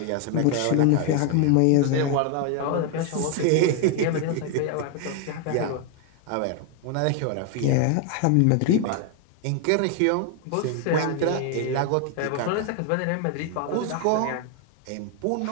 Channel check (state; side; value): different; both; correlation 0.01